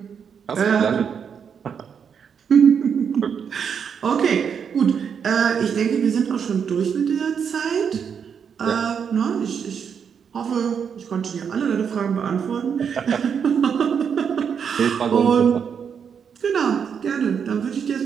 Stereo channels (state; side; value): quieter; left; 7.1 dB